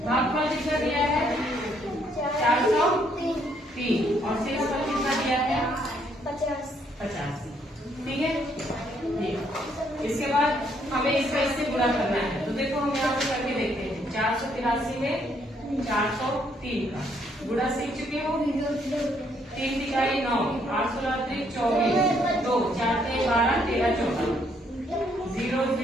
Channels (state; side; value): normal; both; correlation 0.70